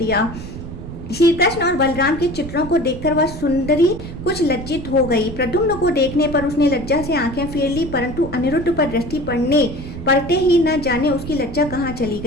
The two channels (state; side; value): noise; right; rumble, 10 dB below the sound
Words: श्री कृष्ण और बलराम के चित्रों को देखकर वह सुंदरी कुछ लज्जित हो गई। प्रद्युम्न को देखने पर उसने लज्जा से आंखें फेर ली, परंतु अनिरुद्ध पर दृष्टि पड़ते ही न जाने उसकी लज्जा कहाँ चली